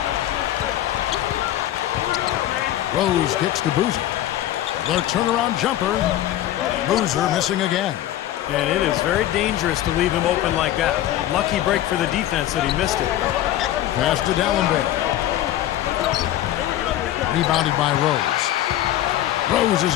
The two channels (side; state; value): right; quieter; 13.1 dB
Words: Rose kicks to Boozer. The turnaround jumper. Boozer missing again. And it is very dangerous to leave him open like that. Lucky break for the defense that he missed it. Pass to Dallenberg. Rebounded by Rose. Rose has